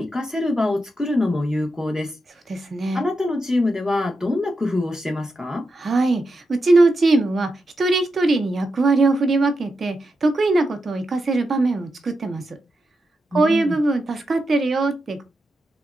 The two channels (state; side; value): normal; both; correlation 0.87